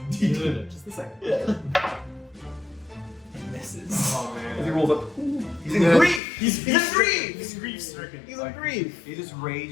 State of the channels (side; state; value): right; drops out; at 6.2 s